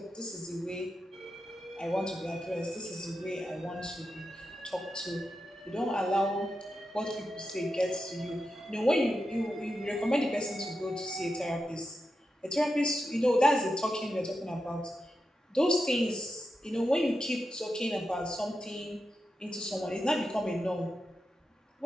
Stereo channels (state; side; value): normal; both; correlation 0.88